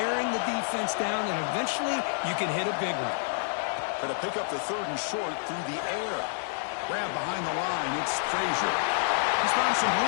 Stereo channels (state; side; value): silent; right; digital silence